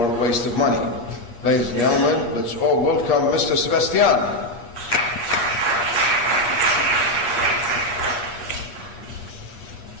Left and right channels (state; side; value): late; right; 8.4 ms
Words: waste of money. Ladies and gentlemen, let's all welcome Mr. Sebastian.